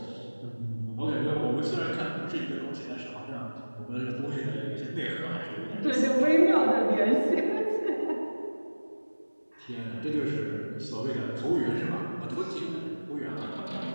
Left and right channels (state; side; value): inverted; both; correlation -1.00